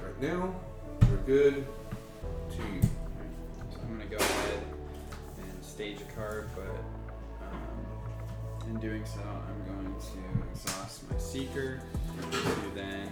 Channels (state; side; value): identical; both; correlation 1.00